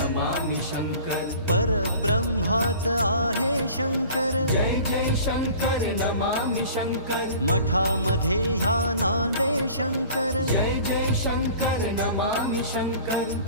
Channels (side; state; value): both; inverted; correlation -0.45